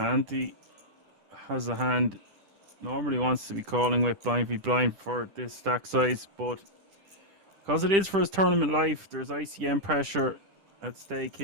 has a hand. Normally wants to be calling with blind v blind for this stack size, but because it is for his tournament life, there's ICM pressure at stake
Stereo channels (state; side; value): late; left; 10 ms